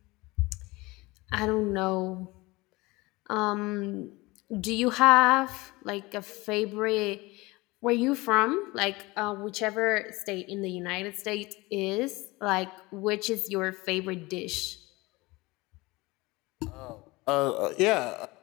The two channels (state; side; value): quieter; right; 22.3 dB